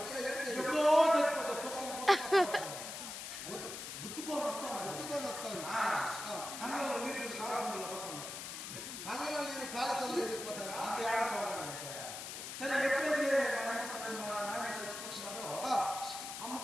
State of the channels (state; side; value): noise; left; hiss, 8 dB below the sound